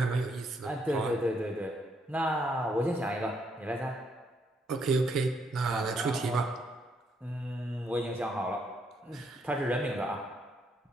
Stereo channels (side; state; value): both; normal; correlation 0.74